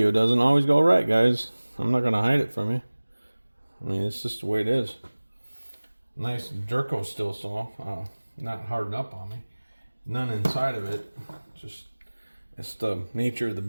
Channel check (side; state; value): both; inverted; correlation -1.00